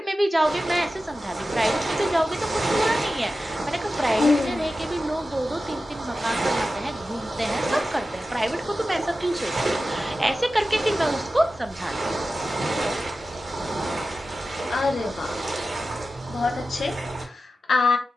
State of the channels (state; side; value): normal; both; correlation 0.93